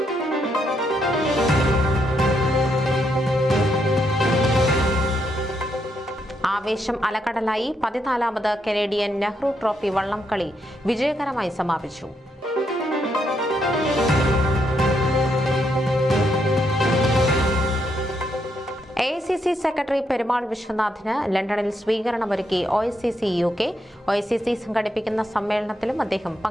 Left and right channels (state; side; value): normal; both; correlation 0.78